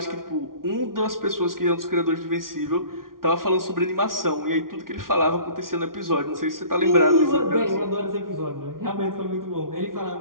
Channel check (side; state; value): left; late; 0.92 ms